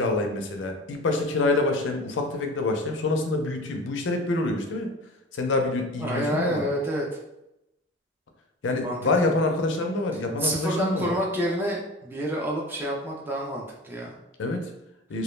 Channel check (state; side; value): normal; both; correlation 0.35